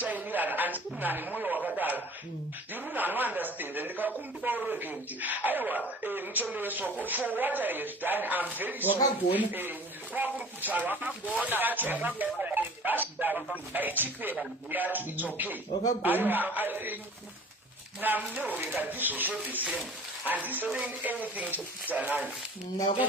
handikunane mwoyo wakadaro ndiri munhu anounderstand ndikakumbira urege kuti aiwa muchombe wesoko for what I have done I'm very sorry kwakuri kutaura aichipera yacho it's okay namuneureka ndizvozvo the same handisaying anything to kutanani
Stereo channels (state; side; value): normal; both; correlation 0.46